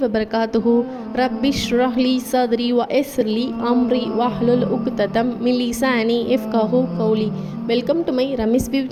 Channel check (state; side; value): identical; both; correlation 1.00